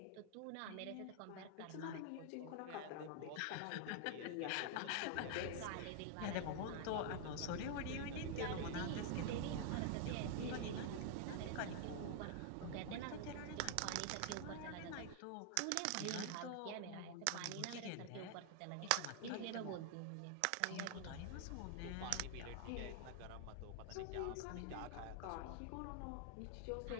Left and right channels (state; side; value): different; both; correlation 0.00